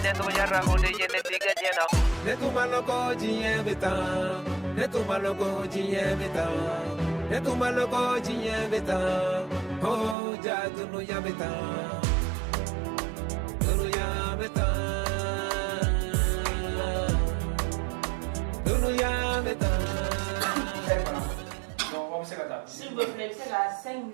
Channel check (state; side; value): drops out; left; at 10.2 s